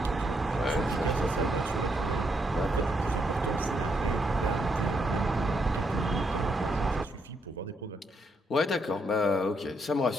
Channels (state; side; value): normal; both; correlation 0.76